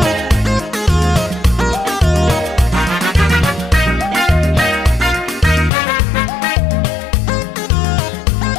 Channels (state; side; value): drops out; right; at 5.7 s